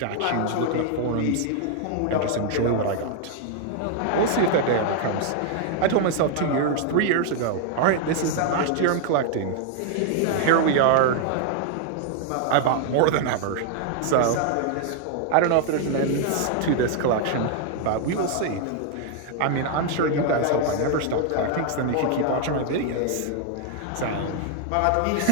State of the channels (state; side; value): different; both; correlation 0.00